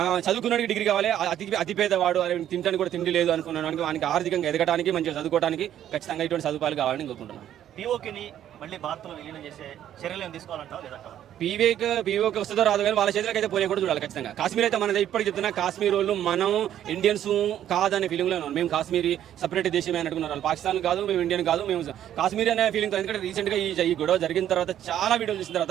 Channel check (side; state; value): left; quieter; 11.0 dB